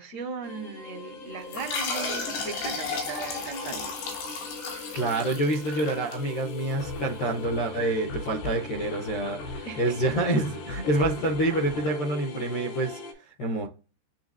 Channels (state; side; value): late; right; 13 ms